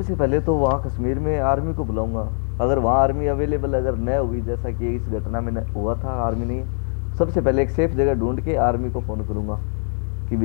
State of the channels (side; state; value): right; silent; 64 dB below the other